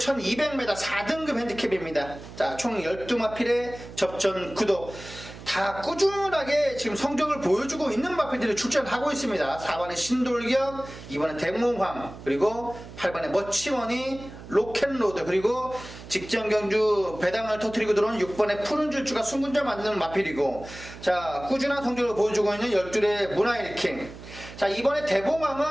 4등급 핸디캡입니다. 자, 총 12마필의 접전 구도. 다 꾸준하게 지금 성적을 보여주고 있는 마필들이 출전하고 있습니다. 4번에 신돌격, 2번에 대몽황, 그리고 8번에 멋치머니, 로켓로드, 그리고 직전 경주 배당을 터뜨리고 들어온 6번에 푸른 줄주가 순군절 만드는 마필이고, 자, 꾸준한 성적을 보여주고 있는 12의 문화일킹. 자, 이번에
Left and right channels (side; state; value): right; noise; hum, 15 dB below the sound